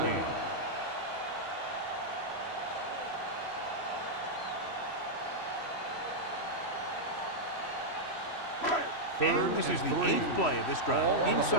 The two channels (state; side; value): late; right; 3.1 ms